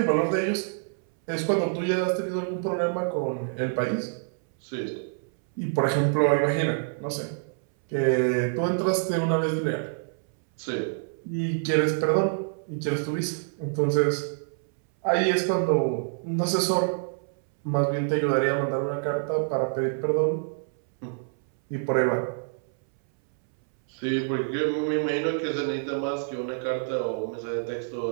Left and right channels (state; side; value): silent; left; 60 dB below the other